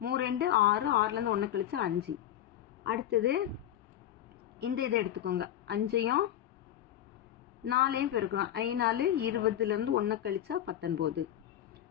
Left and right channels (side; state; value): right; quieter; 11.7 dB